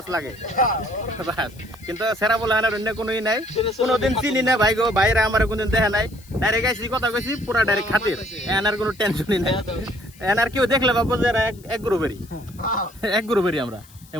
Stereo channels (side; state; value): left; noise; hiss, 25 dB below the sound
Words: লাগে বাস কিন্তু সেরা বলে আনার অন্য কোনোই নাই কোনোদিন চিনি না ভাই গো ভাইরা আমার কোনদিন দেখা নাই ডাইরেক্ট আইসি কথা কইছি পুরা ডাইরেক্ট খাতির এনার কোনো টেনশনই নাই এনার কেউ দেখলে ভাববো যে এরা এক গ্রুপেরই আমরা